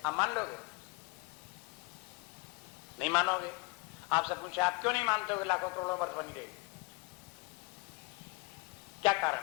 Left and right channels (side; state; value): right; quieter; 26.5 dB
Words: आप मान लोगे? नहीं मानोगे। आपसे पूछे आप क्यों नहीं मानते हो कि लाखों करोड़ों वर्ष बनी रहेगी? क्या कारण